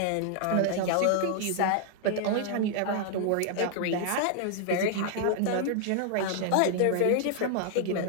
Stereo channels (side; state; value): both; different; correlation 0.00